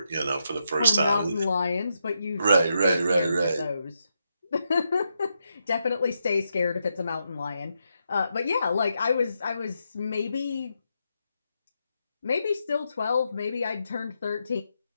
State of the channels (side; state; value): both; inverted; correlation -0.83